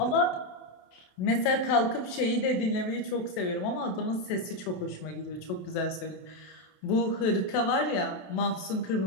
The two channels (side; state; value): right; late; 28 ms